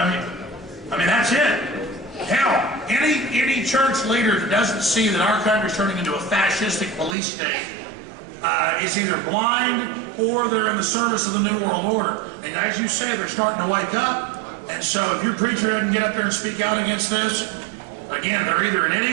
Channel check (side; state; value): left; drops out; at 7.2 s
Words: I mean, that's it. Hell, any church leader that doesn't see that our country's turning into a fascistic police state is either blind or they're in the service of the New World Order. And as you say, they're starting to wake up. And so if your preacher doesn't get up there and speak out against this, again, they're either an